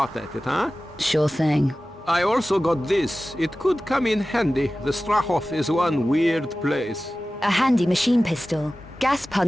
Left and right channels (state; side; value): normal; both; correlation 0.96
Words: at it, huh? Sure thing. I also got this. It could come in handy. The Strahov is one weird place. A handy machine pistol. Gas